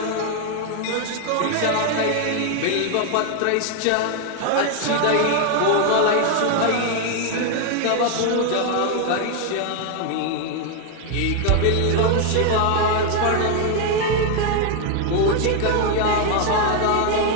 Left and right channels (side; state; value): both; different; correlation 0.01